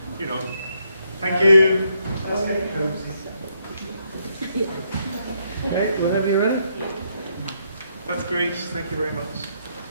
you know, thank you. Okay, whenever you're ready. That's great, thank you very much.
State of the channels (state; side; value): inverted; both; correlation -0.75